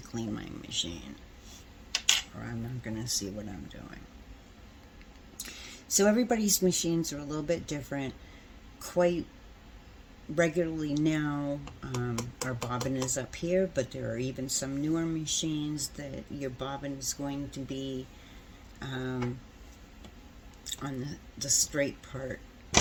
clean my machine, or I'm not going to see what I'm doing. So everybody's machines are a little bit different. Quite regularly now, our bobbin is up here, but there are even some newer machines that your bobbin is going to be on the straight part,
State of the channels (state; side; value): identical; both; correlation 1.00